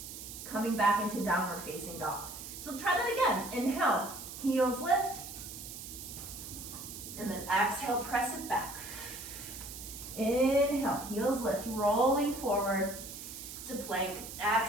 coming back into downward facing dog. So try that again. Inhale, heels lift, and then exhale, press it back. Inhale, heels lift, rolling forward to plank.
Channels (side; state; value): right; noise; hiss, 10 dB below the sound